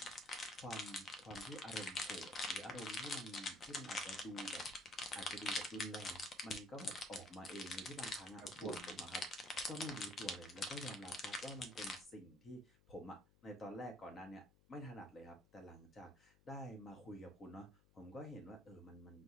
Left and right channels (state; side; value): noise; left; hum, 28 dB below the sound